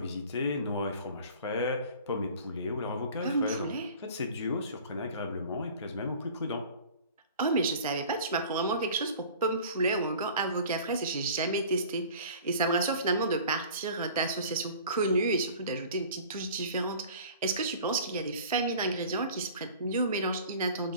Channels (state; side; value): inverted; both; correlation -0.44